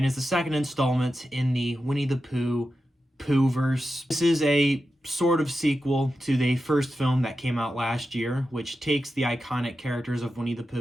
is the second installment in the Winnie the Pooh Pooh-verse. This is a sort of sequel to the first film that came out last year, which takes the iconic characters of Winnie the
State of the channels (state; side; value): normal; both; correlation 0.91